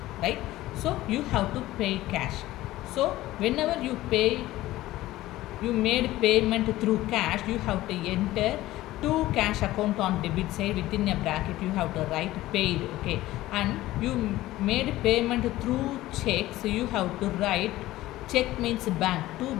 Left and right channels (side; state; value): right; quieter; 16.4 dB